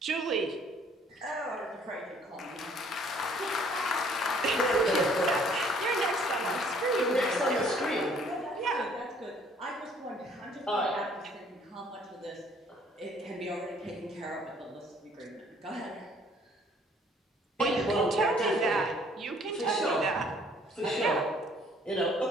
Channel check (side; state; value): both; normal; correlation 0.59